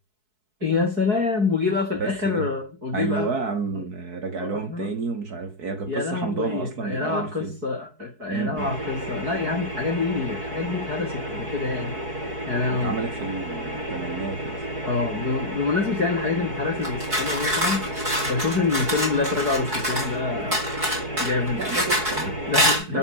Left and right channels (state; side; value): late; left; 4.6 ms